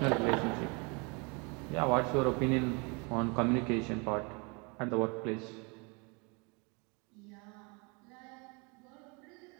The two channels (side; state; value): left; quieter; 31.1 dB